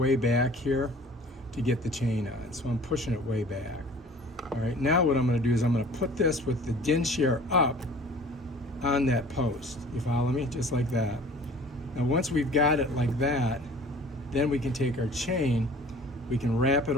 back here to get the chain on. So I'm pushing it way back. All right, now what I'm going to do is I'm going to put this with the Dinshare up on that post. You follow me? Just like that. Now once we've got it like that, then we can take our chain, we can wrap it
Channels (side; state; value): both; normal; correlation 0.47